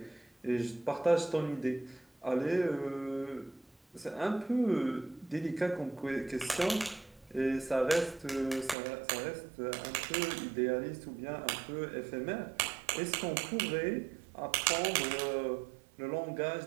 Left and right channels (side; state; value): left; drops out; at 8.8 s